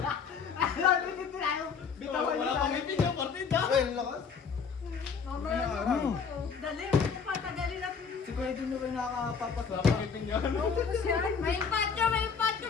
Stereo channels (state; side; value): quieter; right; 6.0 dB